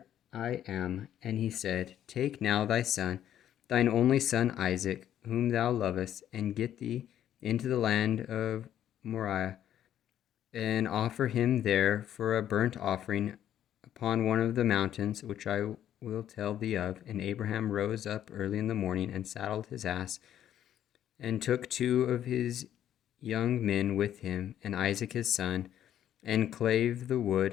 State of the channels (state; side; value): quieter; right; 10.9 dB